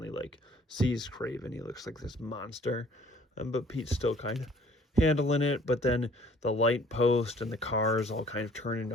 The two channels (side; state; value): both; normal; correlation 0.56